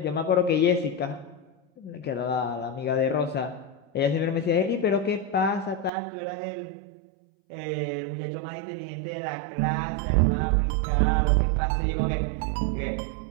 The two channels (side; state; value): left; drops out; at 5.9 s